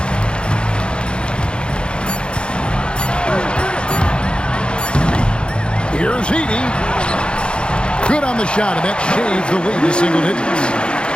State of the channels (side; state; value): right; late; 0.054 ms